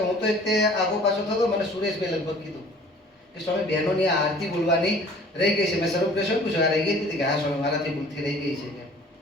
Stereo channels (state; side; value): normal; both; correlation 0.50